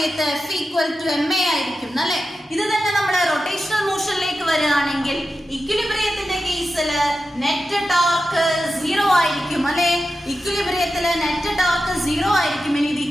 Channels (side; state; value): both; normal; correlation 0.91